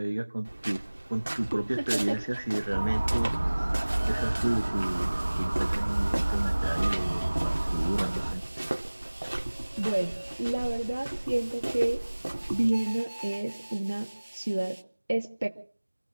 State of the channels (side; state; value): both; inverted; correlation -1.00